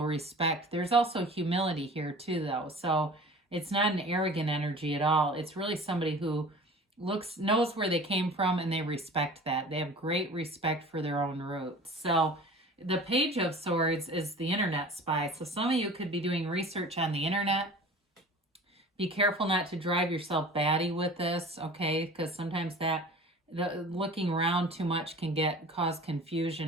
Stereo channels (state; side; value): normal; both; correlation 0.41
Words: respect. There's also humility here too, though. So it's not an arrogant energy at all. It's really somebody who knows where they came from and they respect that. They have great respect for their own roots. So the Page of Swords is the internet spy. So some of you could be doing research on the internet. Be careful not to drive yourself batty with this, okay? Because sometimes the looking around too much can cause